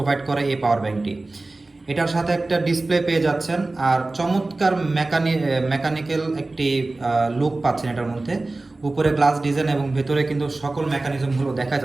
করে এই পাওয়ার ব্যাংকটি। এটার সাথে একটা ডিসপ্লে পেয়ে যাচ্ছেন আর চমৎকার মেকানিক্যাল একটি লুক পাচ্ছেন এটার মধ্যে। উপরে গ্লাস ডিজাইন এবং ভেতরে কিন্তু সকল মেকানিজমগুলো দেখা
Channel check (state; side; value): quieter; left; 3.1 dB